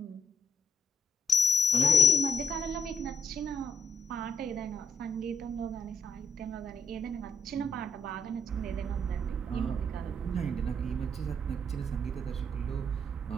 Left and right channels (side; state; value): both; normal; correlation 0.72